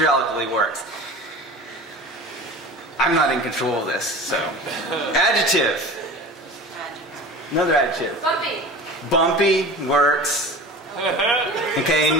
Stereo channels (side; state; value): both; normal; correlation 0.36